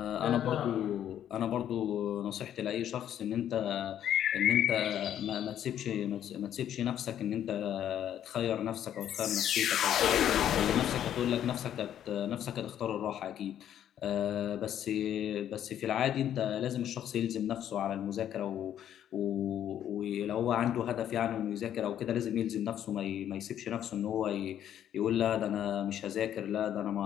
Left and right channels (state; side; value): quieter; right; 10.5 dB